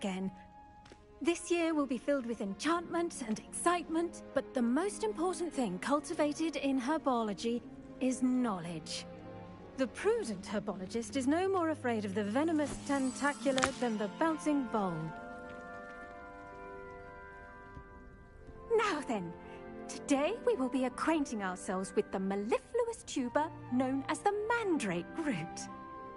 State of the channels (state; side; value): identical; both; correlation 1.00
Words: This year will be filled with enchantment and excitement, but the most important thing cultivated in herbology is knowledge. The prudent herbologist is no more afraid of the venomous tentacula than the bouncing vole. Now then, today we will be acquainting ourselves with the mellifluous tuber known as the mandrake root.